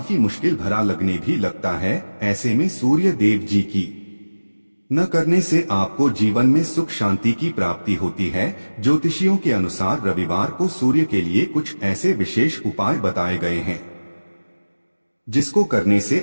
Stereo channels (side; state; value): both; inverted; correlation -1.00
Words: मुश्किल भरा लगने भी लगता है। ऐसे में सूर्य देव जी की न करने से आपको जीवन में सुख शांति की प्राप्ति होती है। ज्योतिषियों के अनुसार रविवार को सूर्य के लिए कुछ ऐसे विशेष उपाय बताए गए हैं जिसको करने से